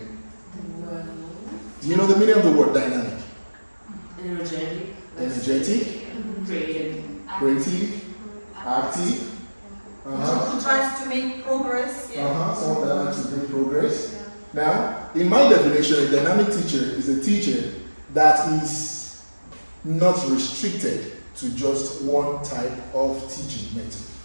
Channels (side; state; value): both; inverted; correlation -1.00